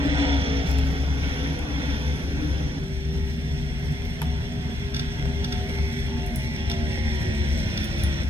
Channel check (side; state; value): both; normal; correlation 0.75